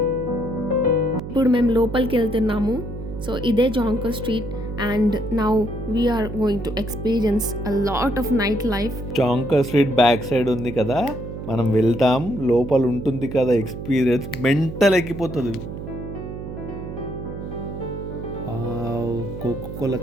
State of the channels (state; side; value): noise; right; hum, 9 dB below the sound